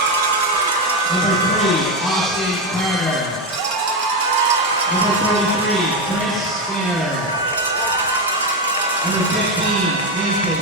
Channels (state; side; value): normal; both; correlation 0.11